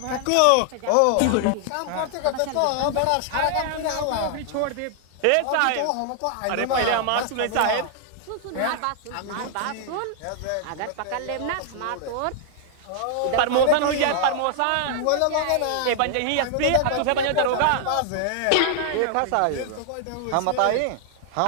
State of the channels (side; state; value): both; different; correlation 0.00